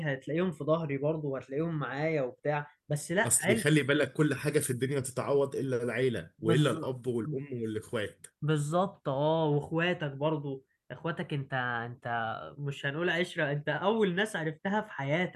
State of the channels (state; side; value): identical; both; correlation 1.00